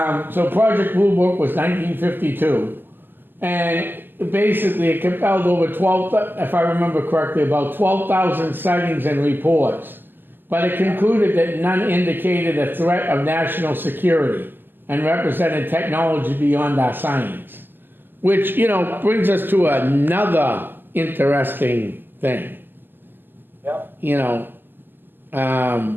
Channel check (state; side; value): late; left; 0.098 ms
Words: So Project Blue Book was 1952, and basically it compelled over 12, if I remember correctly, about 12,000 sightings and reports. But it concluded that none indicated a threat of national security and represented technology beyond our science. Which, you know, brings us to another interesting thing. Yep. You know,